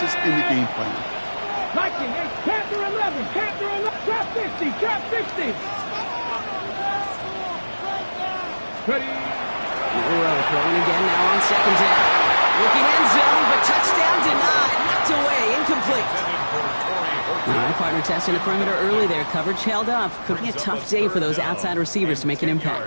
in the game plan. Panther 11, trap 50, trap 60. Ready. Milrow throwing again now on 2nd down. Looking end zone, but touchdown denied. Knocked away, incomplete. All right, partner testing the perimeter early there. Coverage held up. Could be a tough day for those outside receivers to make an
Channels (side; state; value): both; inverted; correlation -1.00